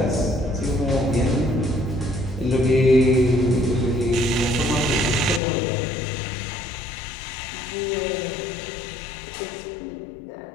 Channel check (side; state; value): right; drops out; at 5.4 s